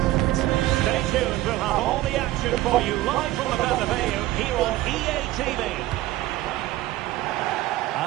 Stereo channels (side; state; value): left; quieter; 16.2 dB